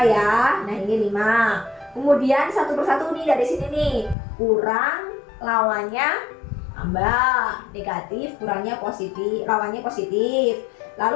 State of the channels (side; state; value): right; drops out; at 4.2 s